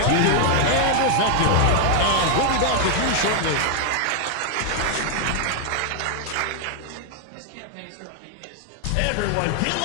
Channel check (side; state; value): both; different; correlation 0.00